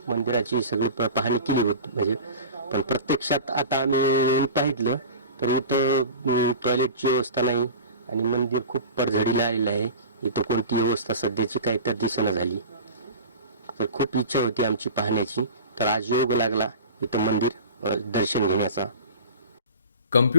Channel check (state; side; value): inverted; both; correlation -0.35